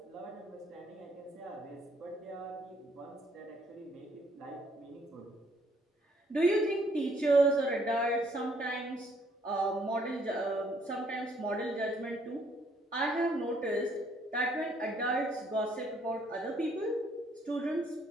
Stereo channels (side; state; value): both; normal; correlation 0.66